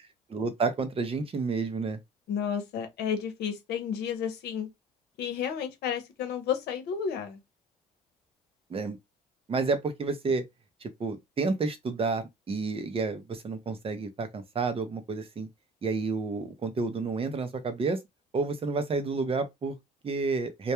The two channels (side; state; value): both; normal; correlation 0.44